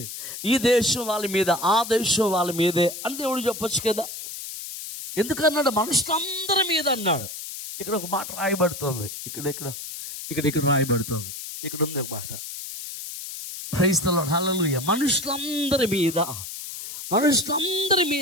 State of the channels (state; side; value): noise; left; hiss, 9 dB below the sound